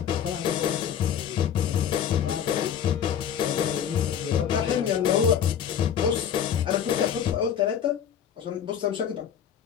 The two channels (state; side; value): quieter; right; 8.7 dB